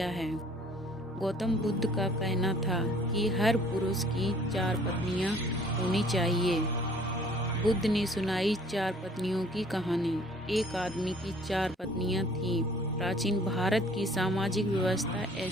है। गौतम बुद्ध का कहना था कि हर पुरुष की 4 पत्नियां होनी चाहिए। बुद्ध ने सुनाई 4 पत्नियों की कहानी। एक आदमी की 4 पत्नियां थीं। प्राचीन भारत की सामाजिक व्यवस्था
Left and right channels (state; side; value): normal; both; correlation 0.55